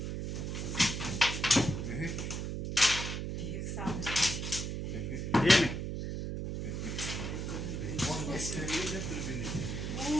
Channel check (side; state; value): right; noise; hum, 3 dB below the sound